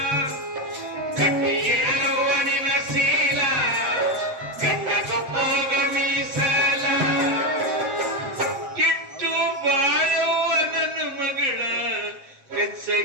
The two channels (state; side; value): late; left; 7.6 ms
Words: ಗಟ್ಟಿ ಇರಲುವ ನಿನ್ನ ಶೀಲ ಗಂಡಗೊಬ್ಬಗ ಮೀಸಲ ಇಟ್ಟು ಬಾಳುವ ನನ್ನ ಮಗಳ ಹೆಚ್ಚ